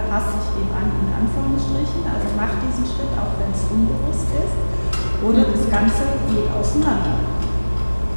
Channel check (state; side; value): inverted; both; correlation -1.00